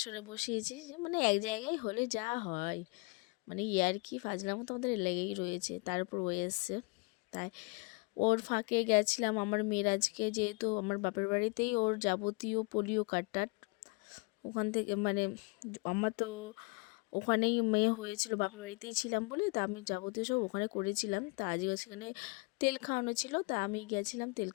বসিয়েছি, মানে এক জায়গায় হলে যা হয়, মানে ইয়ার্কি ফাজলামো তো আমাদের লেগেই রয়েছে। তার উপর ও এসছে, তাই ওর ফাঁকে গেছিলাম আমার মেয়ের আজকে, যেহেতু আমার বাপের বাড়িতেই ওর যাবতীয় পোলিও কার্ড ওখান থেকে, মানে আমার তো ওখানেই মেয়ে হয়েছিল, বাপের বাড়িতেই ছিলাম বলে, তা আমি যাবতীয় সব ওখানে করেছিলাম। তা আজকে সেখানে তেল খাওয়ানো ছিল, তা আমি গেছিলাম তেল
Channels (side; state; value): right; quieter; 29.9 dB